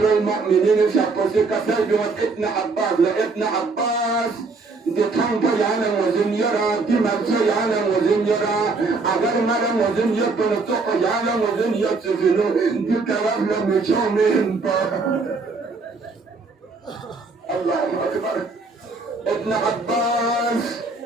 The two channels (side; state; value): left; quieter; 4.0 dB